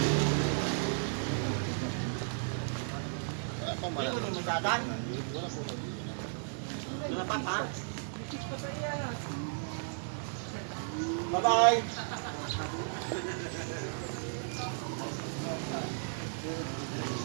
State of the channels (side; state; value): left; silent; digital silence